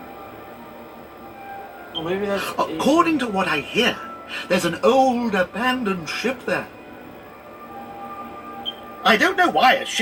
Or maybe that's... According to what I hear, there's an old abandoned ship there. I don't know why a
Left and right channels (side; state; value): both; identical; correlation 1.00